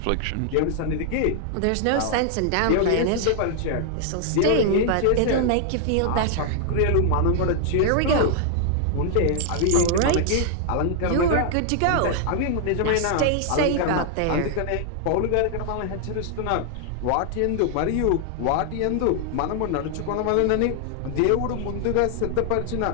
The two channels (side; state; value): both; different; correlation 0.00